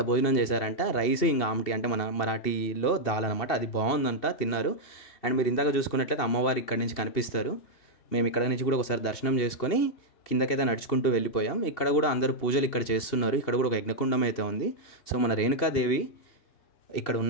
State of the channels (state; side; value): late; right; 2.7 ms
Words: భోజనం చేశారంట. రైస్ ఇంకా ఆమ్టి అంటే మన మరాఠీలో దాల్ అనమాట. అది బాగుందంట, తిన్నారు. అండ్ మీరు ఇందాక చూసుకున్నట్లయితే అమ్మవారు ఇక్కడి నుంచి కనిపిస్తారు. మేము ఇక్కడ నుంచి కూడా ఒకసారి దర్శనం చేసుకొని కిందకైతే నడుచుకుంటూ వెళ్ళిపోయాం. ఇక్కడ కూడా అందరూ పూజలు ఇక్కడ చేస్తున్నారు. ఇక్కడ కూడా ఒక యజ్ఞకుండం అయితే ఉంది. సో మన రేణుకాదేవి ఇక్కడ